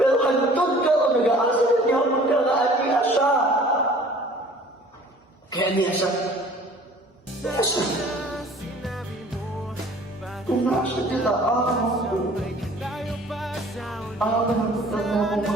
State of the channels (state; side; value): normal; both; correlation 0.50